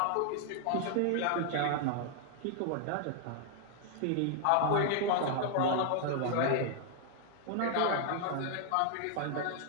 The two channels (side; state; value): both; different; correlation 0.00